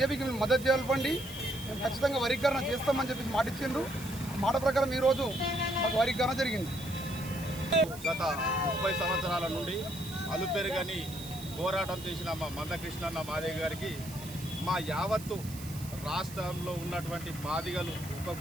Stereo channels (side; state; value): right; noise; hiss, 15 dB below the sound